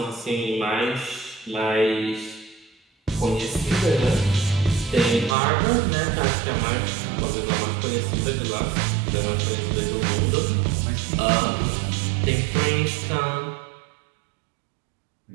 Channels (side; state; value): left; drops out; at 5.4 s